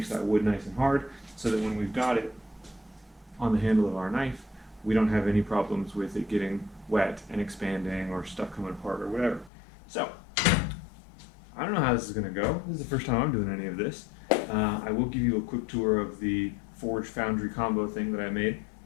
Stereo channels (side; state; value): right; drops out; at 9.5 s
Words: that wood nice and hard so that when we've got it on the handle of our knife, we don't have any problems with it getting wet and expanding or stuff coming apart or whatever. So, I don't know how this is going to go. This is the first time I'm doing any of this. I will give you a quick tour of the Forge Foundry combo thing that I made.